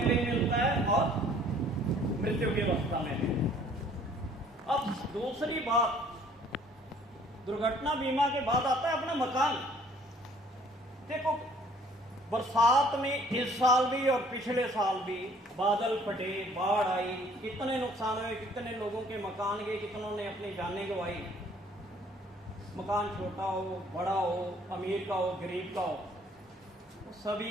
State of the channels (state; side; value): normal; both; correlation 0.58